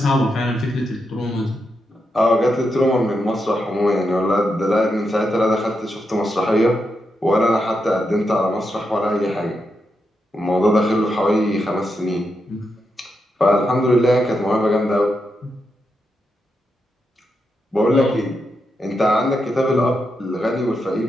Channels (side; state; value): both; normal; correlation 0.85